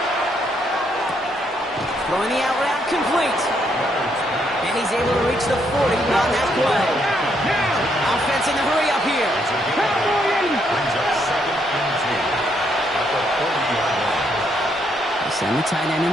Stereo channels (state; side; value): normal; both; correlation 0.74